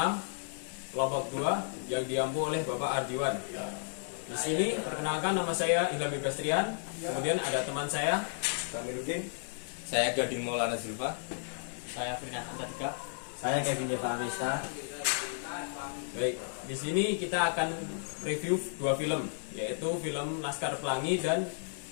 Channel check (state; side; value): silent; right; 56 dB below the other